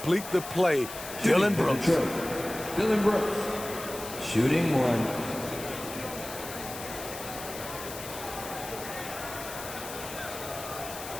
the play. Dillon Brooks. Dillon Brooks, shooting 1.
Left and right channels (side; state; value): left; noise; hiss, 11 dB below the sound